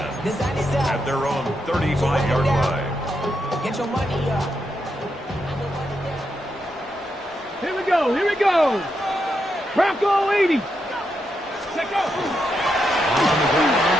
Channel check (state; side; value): normal; both; correlation 0.83